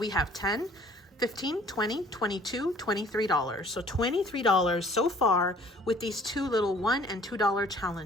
have 10, 15, 20, 22, $23. So $23 so far with these 2 little $1 and $2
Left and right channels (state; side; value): normal; both; correlation 0.54